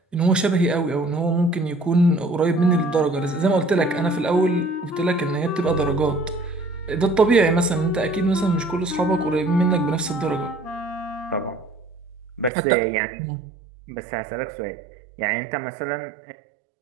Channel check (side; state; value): left; drops out; at 12.5 s